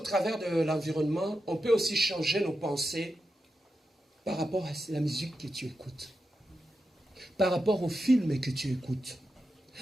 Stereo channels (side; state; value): both; normal; correlation 0.88